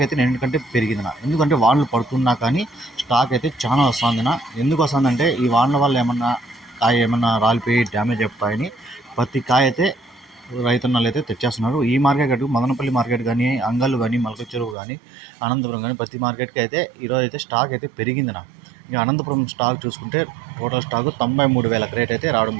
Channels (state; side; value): drops out; left; at 14.8 s